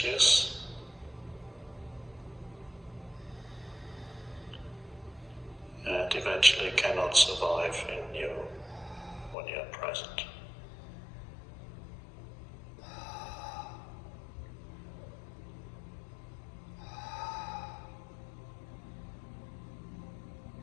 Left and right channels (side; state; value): right; drops out; at 9.3 s